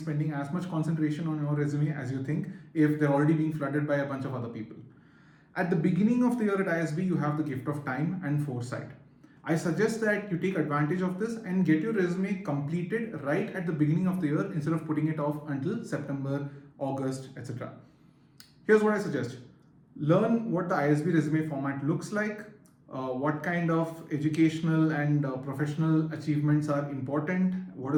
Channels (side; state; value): both; identical; correlation 1.00